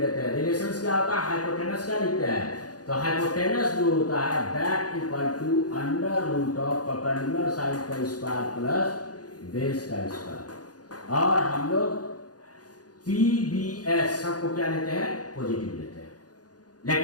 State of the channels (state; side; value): late; right; 0.68 ms